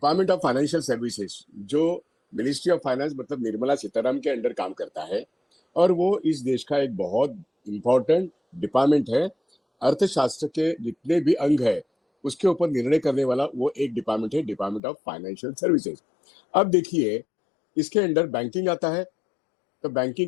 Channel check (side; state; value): right; drops out; at 14.8 s